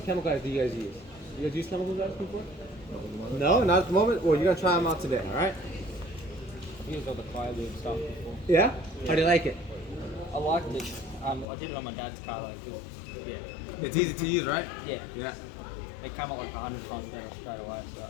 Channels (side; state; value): right; drops out; at 11.5 s